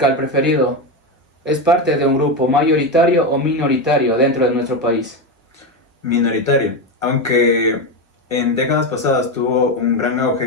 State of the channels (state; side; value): normal; both; correlation 0.13